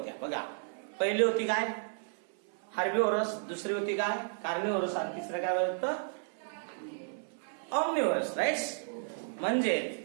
बघा. पहिली होती काय? हार्बिव्होरस. दुसरी होती काय? कार्निव्होरस. आणि तिसरं काय होतं? ऑमनिव्होरस. राईट. म्हणजे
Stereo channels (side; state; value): left; silent; 56 dB below the other